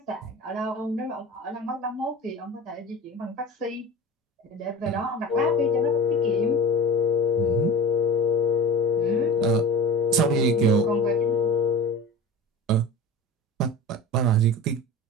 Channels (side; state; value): both; normal; correlation 0.34